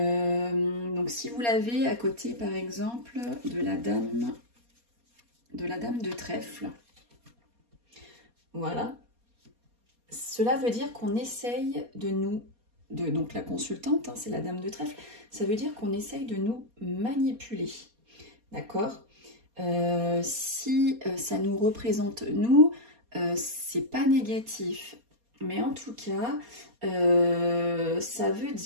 si vous l'avez à côté, par exemple, de la dame de trèfle, voilà. Cela veut dire qu'on essaye donc la consultante, hein, c'est la dame de trèfle, ça veut dire qu'on essaye de nous manipuler, d'accord? Si ça nous représente nous, c'est pas négatif. Mais en tout cas, ça veut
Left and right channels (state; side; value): late; left; 4.2 ms